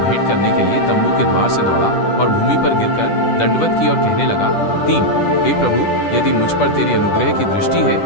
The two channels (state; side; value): late; right; 10 ms